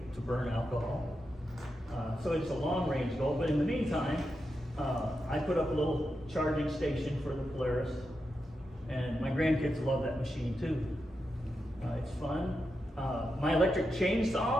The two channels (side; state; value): both; normal; correlation 0.87